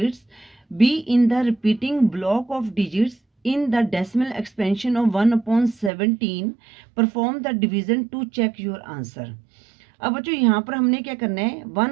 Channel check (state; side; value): drops out; left; at 5.9 s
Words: be in the repeating block of digits in the decimal expansion of 1/17? perform the division to check your answer। अब बच्चों यहाँ पर हमने क्या करना है,